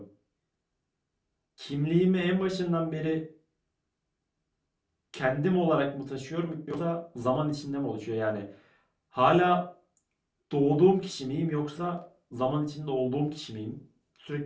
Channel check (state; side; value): identical; both; correlation 1.00